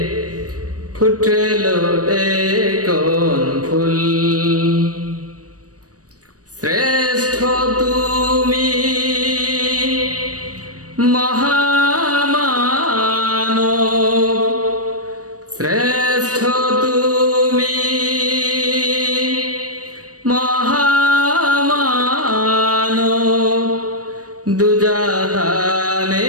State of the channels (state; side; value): late; left; 0.67 ms